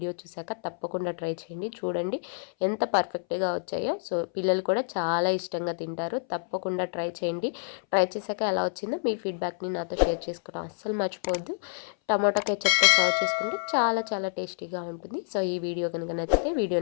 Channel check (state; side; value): silent; right; 59 dB below the other